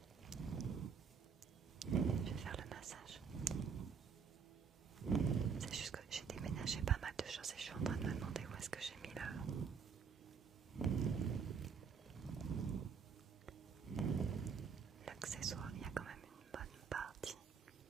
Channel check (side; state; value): left; quieter; 6.3 dB